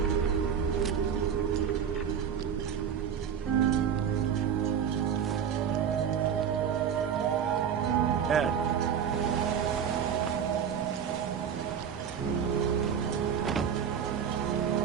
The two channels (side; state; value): left; quieter; 7.9 dB